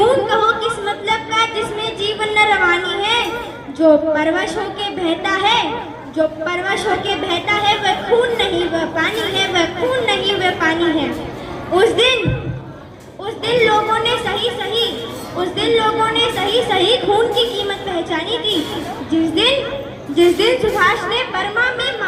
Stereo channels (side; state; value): both; identical; correlation 1.00